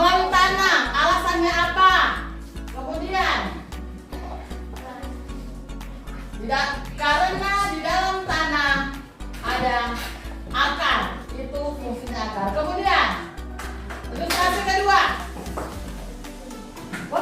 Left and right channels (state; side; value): identical; both; correlation 1.00